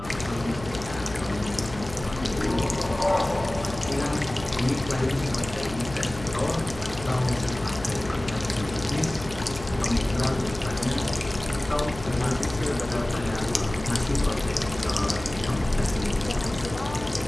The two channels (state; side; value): noise; left; hum, 13 dB below the sound